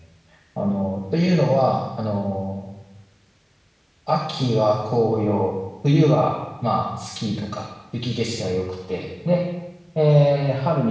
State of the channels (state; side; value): identical; both; correlation 1.00